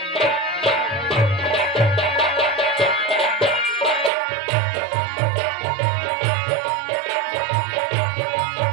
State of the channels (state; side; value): drops out; left; at 4.1 s